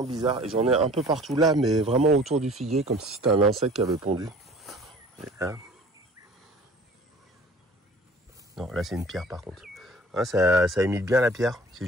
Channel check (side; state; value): both; normal; correlation 0.47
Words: bizarre. Et j'en ai un peu partout là, mais vraiment autour du figuier, comme si c'était un insecte qui avait pondu. Et là. Non, là c'est une pierre par contre. Hein, ça imite bien la pierre, c'est